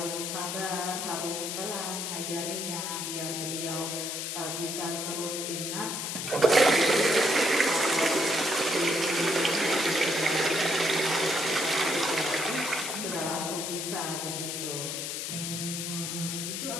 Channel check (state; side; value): noise; left; hiss, 4 dB below the sound